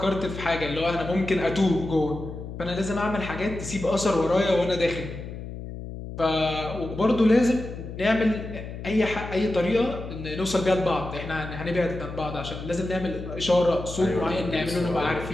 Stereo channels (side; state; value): left; noise; hum, 9 dB below the sound